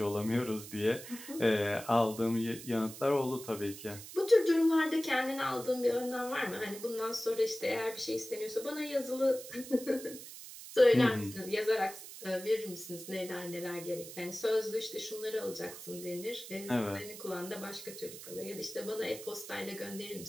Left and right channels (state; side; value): noise; right; hiss, 13 dB below the sound